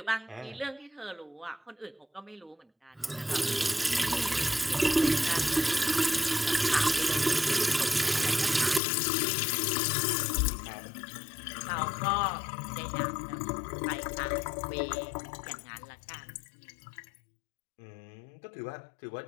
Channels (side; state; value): right; drops out; at 8.8 s